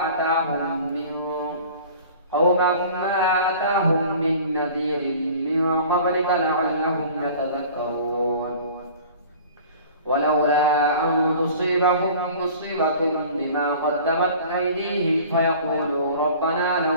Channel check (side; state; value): both; inverted; correlation -0.45